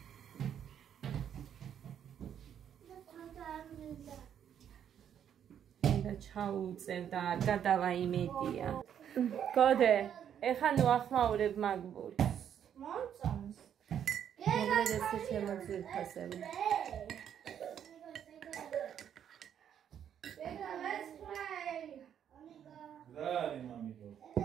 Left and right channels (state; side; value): quieter; left; 9.1 dB